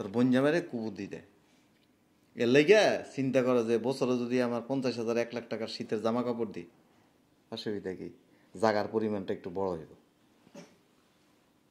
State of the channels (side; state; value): both; identical; correlation 1.00